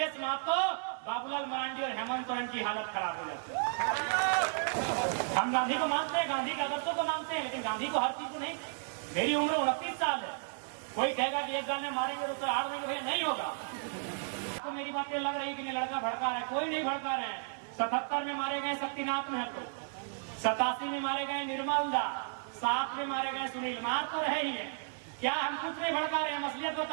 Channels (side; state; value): left; silent; 55 dB below the other